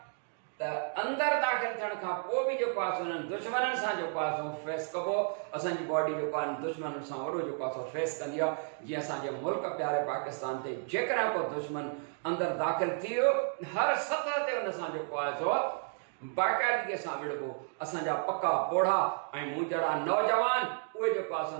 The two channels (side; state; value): left; silent; 56 dB below the other